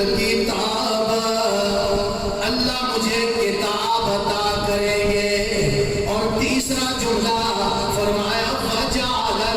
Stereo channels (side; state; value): both; identical; correlation 1.00